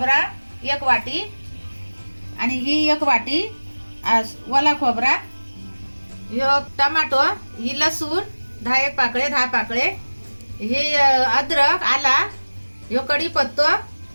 1 वाटी आणि ही 1 वाटी ओला खोबरा, ह्यो टमाटो, ही लसूण 10 पाकळे, हे अद्रक आला, ह्यो कढीपत्तो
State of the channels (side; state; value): both; inverted; correlation -1.00